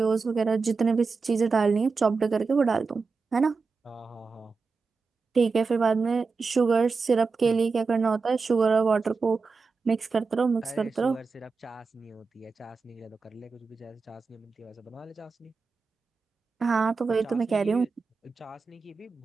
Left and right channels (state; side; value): quieter; left; 4.5 dB